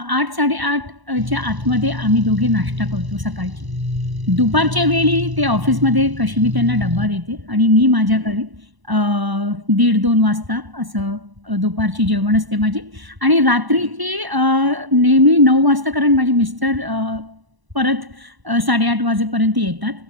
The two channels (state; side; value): late; left; 1.0 ms